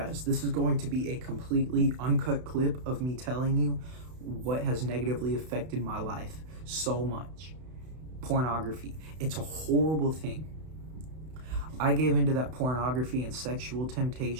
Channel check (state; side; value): late; left; 32 ms